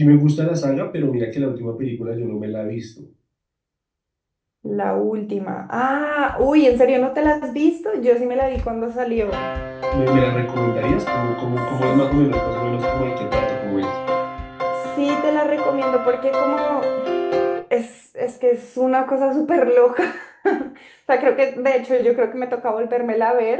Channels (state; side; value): identical; both; correlation 1.00